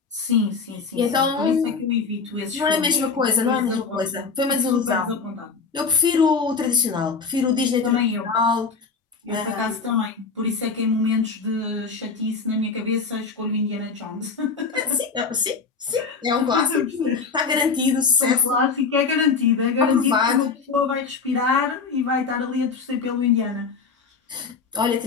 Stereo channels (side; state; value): right; quieter; 5.0 dB